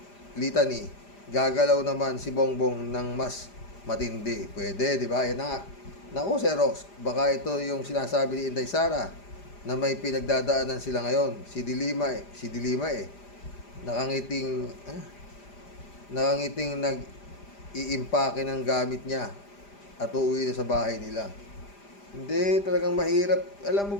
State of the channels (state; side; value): late; right; 5.0 ms